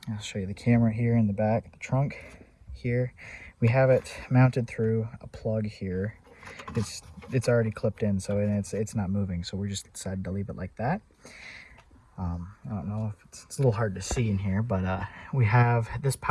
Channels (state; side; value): identical; both; correlation 1.00